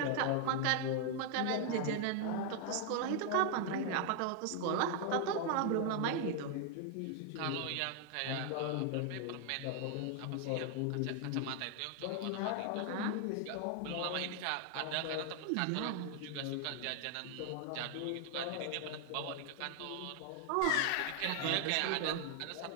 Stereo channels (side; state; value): both; different; correlation 0.00